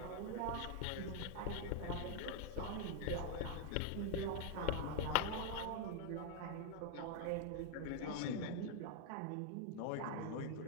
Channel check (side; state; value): both; different; correlation 0.00